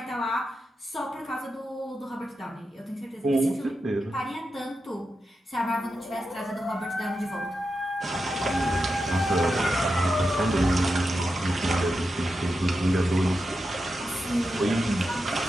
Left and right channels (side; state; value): both; normal; correlation 0.89